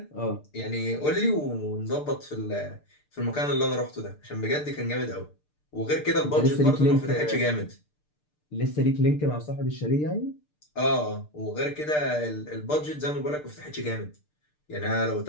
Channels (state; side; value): late; right; 6.7 ms